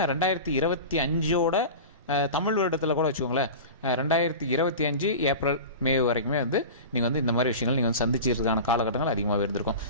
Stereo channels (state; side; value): inverted; both; correlation -0.31